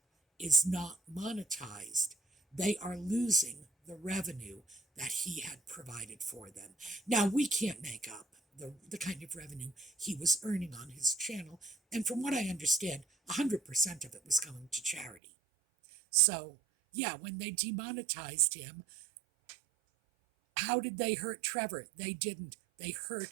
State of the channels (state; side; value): drops out; left; at 15.2 s